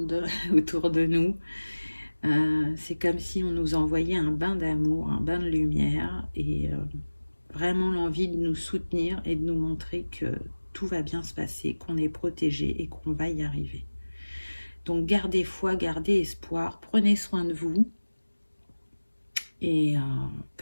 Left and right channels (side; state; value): both; inverted; correlation -1.00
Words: autour de nous. C'est comme si on nous envoyait un bain d'amour, un bain de lumière et vraiment l'envie de nous soutenir et de nous montrer que tout va bien se passer, qu'on est protégé et qu'on va y arriver. Donc gardez foi, gardez espoir, prenez soin de vous. Et